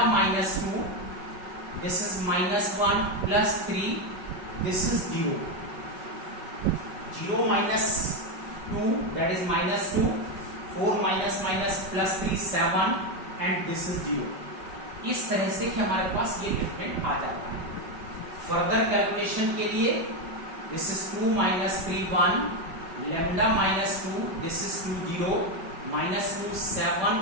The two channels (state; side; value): late; left; 5.3 ms